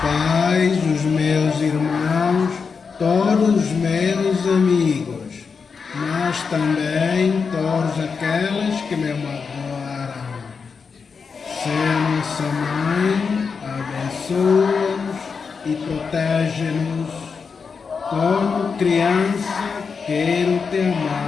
pais, os meus irmãos, todos os meus amigos, mas também todos aqueles que me magoaram. Seja nossa mãe, abençoa-nos e protege-nos. Como criança, quero te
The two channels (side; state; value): right; quieter; 5.5 dB